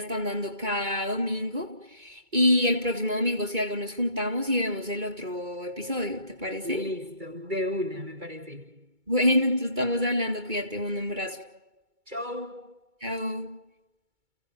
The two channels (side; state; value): left; late; 2.3 ms